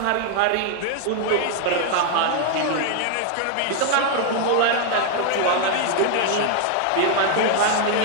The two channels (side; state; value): both; different; correlation 0.00